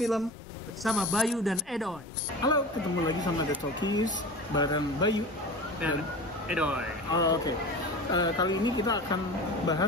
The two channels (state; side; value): normal; both; correlation 0.33